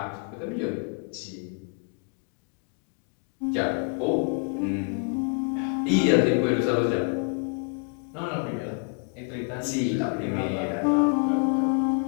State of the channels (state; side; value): quieter; right; 39.2 dB